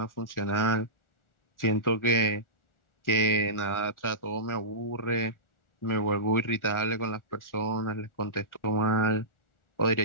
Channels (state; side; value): late; right; 1.4 ms